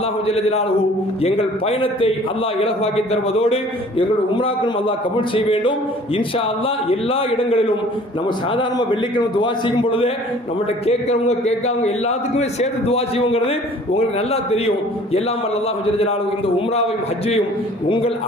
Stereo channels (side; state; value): both; normal; correlation 0.51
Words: ஜல்ல ஜலாலுஹு எங்கள் பயணத்தை அல்லாஹ் இலகுவாக்கி தருவதோடு எங்களுடைய உம்ராக்களும் அல்லாஹ் கபூல் செய்ய வேண்டும். இன்ஷா அல்லாஹ் எல்லா இடங்களிலும் நம்ம சாதாரண வெள்ளிக்கிழமை துவா செய்யும் பொழுது நம்மகிட்ட கேட்கிறவங்க கேட்காதவங்க எல்லாத்துக்குமே சேர்த்து துவா செய்வோங்கிறது உங்களுக்கு நல்லா தெரியும். எல்லாம் வல்ல அல்லாஹ் ஜல்ல ஜலாலுஹு இந்த உம்ராவையும் ஹஜ்ஜையும் உங்கள்